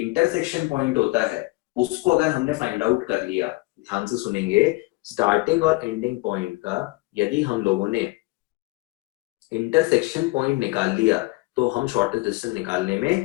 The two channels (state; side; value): quieter; right; 22.8 dB